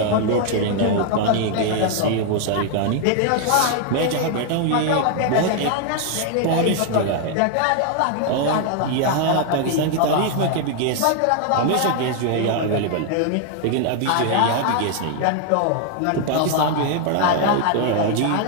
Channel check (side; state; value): both; different; correlation 0.00